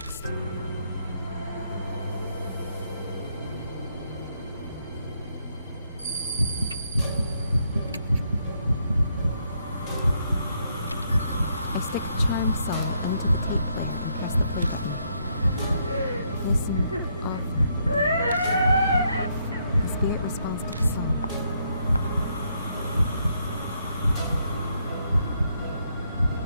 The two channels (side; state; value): both; inverted; correlation -0.75